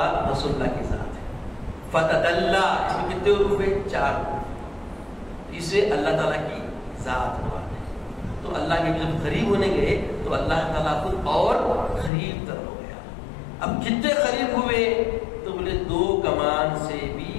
رسول اللہ کی ذات ہے۔ فتدلی اس میں کتنے حروف ہیں؟ 4 حروف، اس سے اللہ تعالیٰ کی ذات مراد ہے۔ تو اللہ کے جب قریب ہونے گئے تو اللہ تعالیٰ خود اور قریب تر ہو گیا۔ اب کتنے قریب ہوئے تو بولے 2 کمان سے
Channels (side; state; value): right; drops out; at 12.1 s